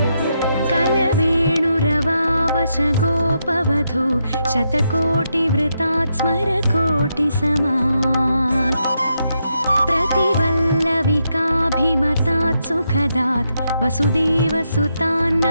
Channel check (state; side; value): inverted; both; correlation -0.82